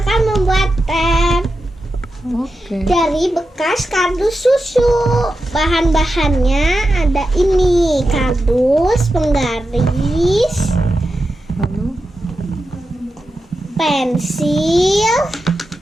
membuat teh dari bekas kardus susu. Bahan-bahannya ada ini: kardus, penggaris, Lalu pensil,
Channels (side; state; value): both; normal; correlation 0.90